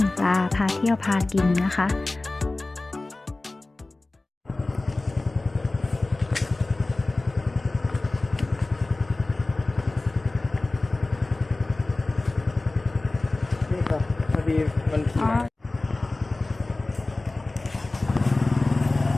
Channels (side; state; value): right; quieter; 3.0 dB